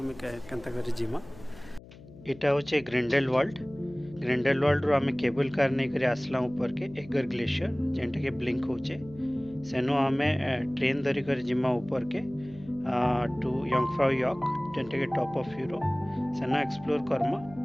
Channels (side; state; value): left; noise; hum, 20 dB below the sound